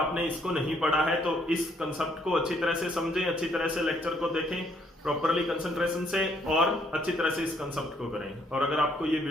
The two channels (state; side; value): normal; both; correlation 0.68